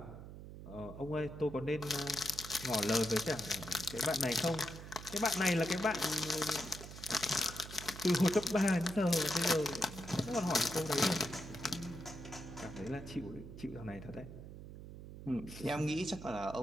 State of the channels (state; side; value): noise; right; hum, 12 dB below the sound